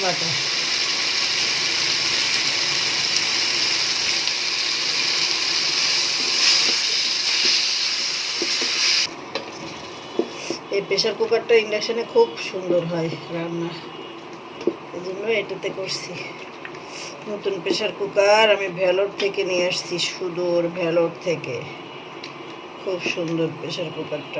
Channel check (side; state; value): both; identical; correlation 1.00